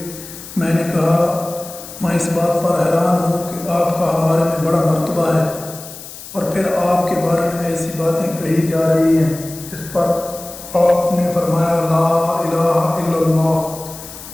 میں نے کہا، میں اس بات پر حیران ہوں کہ آپ کا ہمارے میں بڑا مرتبہ ہے اور پھر آپ کے بارے میں ایسی باتیں کہی جا رہی ہیں۔ اس پر آپ نے فرمایا، لا الہ الا اللہ،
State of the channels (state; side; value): noise; left; hiss, 14 dB below the sound